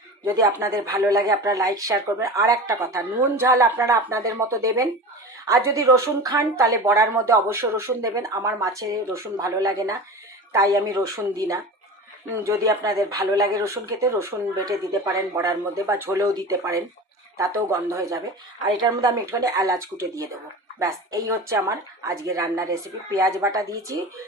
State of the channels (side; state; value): both; normal; correlation 0.31